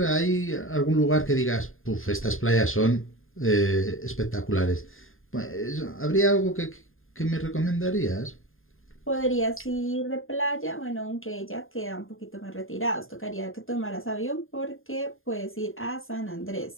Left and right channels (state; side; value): late; right; 0.60 ms